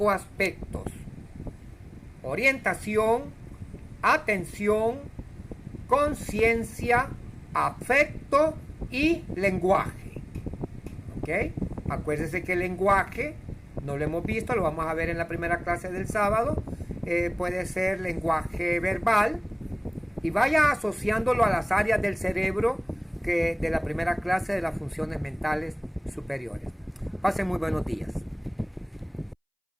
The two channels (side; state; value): both; identical; correlation 1.00